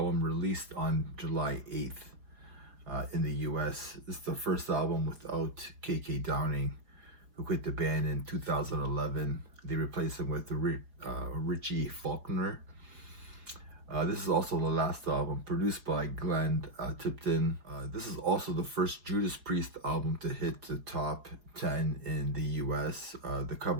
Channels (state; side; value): late; left; 4.9 ms